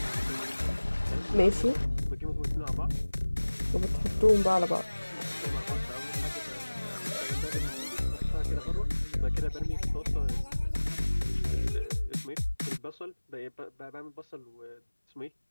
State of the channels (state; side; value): inverted; both; correlation -1.00